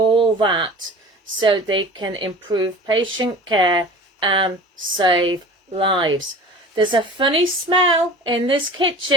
that so they can improve patient care and save lives. There's a funny smell in this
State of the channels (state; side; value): normal; both; correlation 0.39